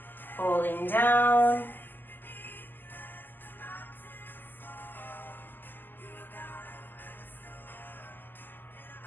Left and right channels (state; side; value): late; right; 0.091 ms